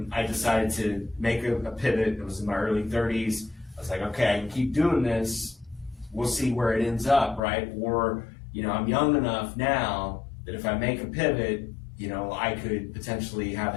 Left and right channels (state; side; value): drops out; right; at 7.4 s